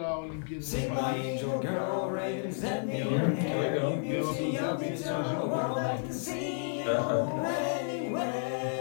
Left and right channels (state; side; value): silent; right; digital silence